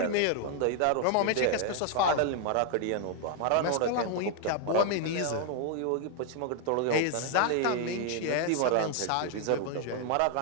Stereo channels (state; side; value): different; both; correlation 0.00